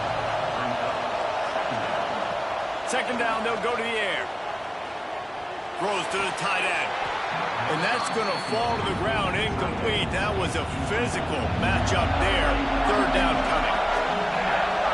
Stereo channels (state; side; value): identical; both; correlation 1.00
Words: Second down, they'll go to the air. Throws to the tight end. And that's going to fall to the ground incomplete. That was a physical matchup there. Third down coming.